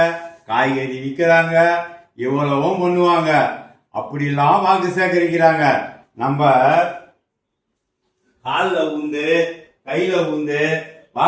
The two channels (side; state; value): both; identical; correlation 1.00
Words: காய்கறி விற்கிறாங்க, இவ்வளவும் பண்ணுவாங்க. அப்படிலாம் வாக்கு சேகரிக்கிறாங்க. நம்ம காலில் ஊந்து கையில ஊந்து